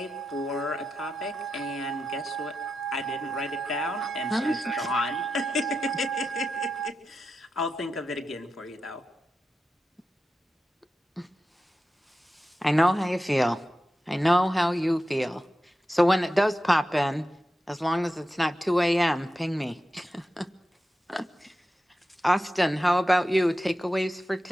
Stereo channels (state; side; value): normal; both; correlation 0.90